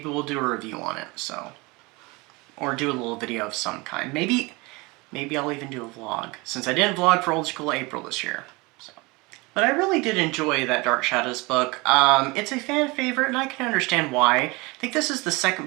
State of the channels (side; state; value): left; quieter; 24.9 dB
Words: we'll do a review on it, so. Or do a little video of some kind. Maybe Maybe I'll even do a vlog, since I didn't vlog for Old School April this year. So. But I really did enjoy that Dark Shadows book. It's a fan favorite, and I can understand why. I think this is the